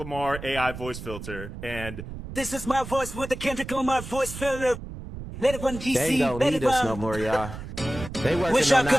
AI voice filter, and This is my voice with the Kendrick Lamar voice filter. Let it run, DC. They ain't gonna let need it us run. no more, y'all. They working Wish I on could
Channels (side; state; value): right; noise; rumble, 10 dB below the sound